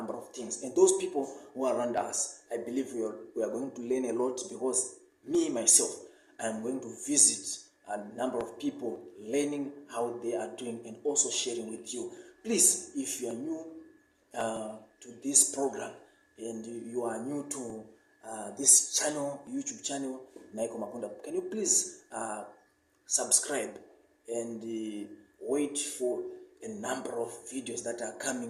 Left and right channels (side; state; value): both; identical; correlation 1.00